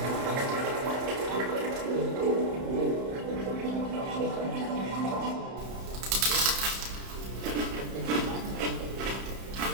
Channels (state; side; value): late; left; 31 ms